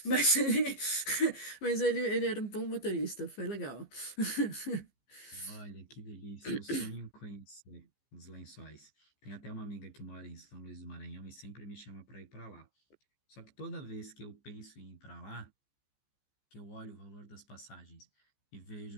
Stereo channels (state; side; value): late; right; 15 ms